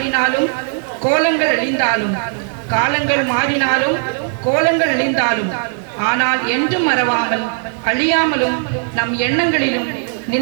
கோலங்கள் அழிந்தாலும், காலங்கள் மாறினாலும் கோலங்கள் அழிந்தாலும், ஆனால் என்றும் மறவாமல் அழியாமலும் நம் எண்ணங்களிலும்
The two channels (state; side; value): silent; left; 58 dB below the other